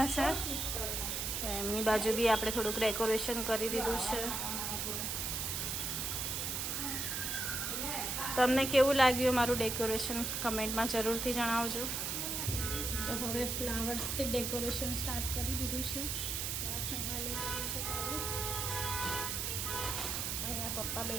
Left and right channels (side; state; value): right; noise; hiss, 1 dB below the sound